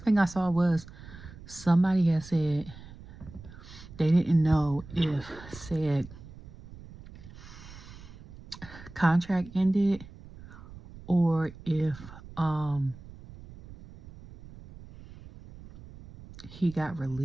thing I saw was somebody had said they didn't know if said contract ended or if he got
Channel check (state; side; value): noise; right; rumble, 17 dB below the sound